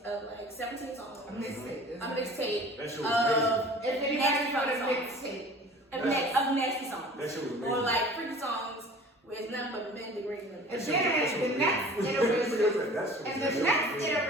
like 17 songs. A mixtape. A mixtape. That shit was amazing. If anybody got a mixtape. Of nasty songs. That shit was amazing. Or like freaky songs where it's nothing but men degrading them. And then the next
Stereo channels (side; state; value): both; normal; correlation 0.44